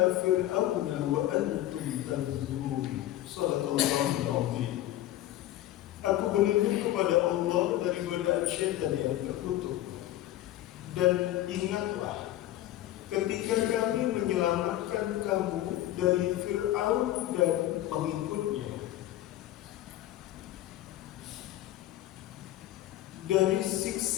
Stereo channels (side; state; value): right; quieter; 14.3 dB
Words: فِرْعَوْنَ وَأَنْتُمْ تَنْظُرُونَ. Shadaqallahul Azim. Aku berlindung kepada Allah dari godaan syaitan yang terkutuk. Dan ingatlah ketika kami menyelamatkan kamu dari Fir'aun dan pengikutnya, dari